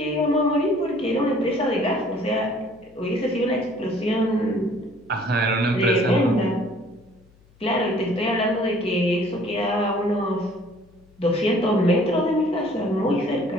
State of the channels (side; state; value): left; noise; hum, 30 dB below the sound